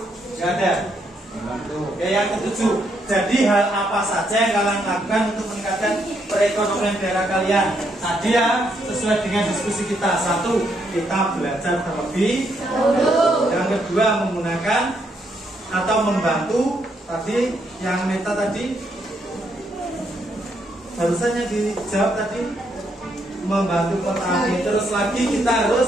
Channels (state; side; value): normal; both; correlation 0.75